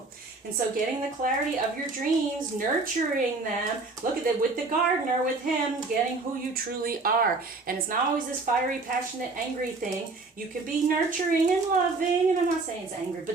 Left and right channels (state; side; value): quieter; left; 3.6 dB